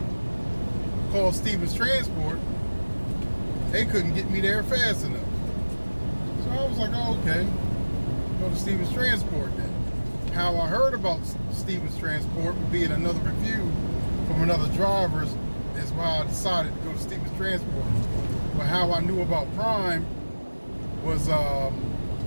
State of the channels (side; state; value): both; inverted; correlation -1.00